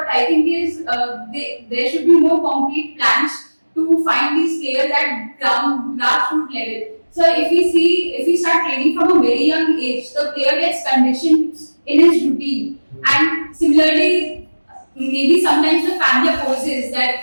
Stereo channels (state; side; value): inverted; both; correlation -1.00